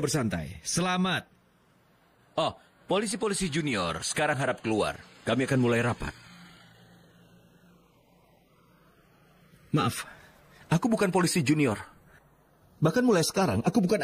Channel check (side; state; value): both; identical; correlation 1.00